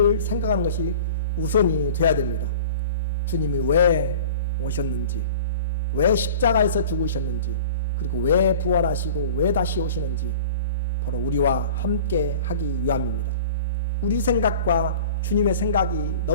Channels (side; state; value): both; inverted; correlation -0.42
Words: 생각하는 것이 우선이 돼야 됩니다. 주님이 왜 오셨는지, 왜 십자가에서 죽으셨는지, 그리고 왜 부활하시고 왜 다시 오시는지 바로 우리와 함께 하기 위함입니다. 우리 생각과 주님의 생각이